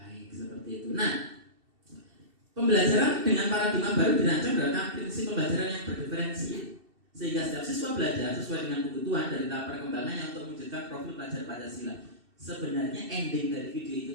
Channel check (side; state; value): left; late; 2.7 ms